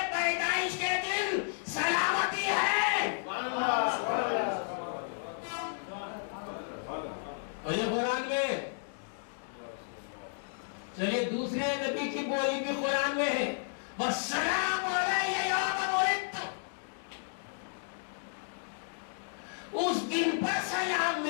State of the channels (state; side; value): silent; right; digital silence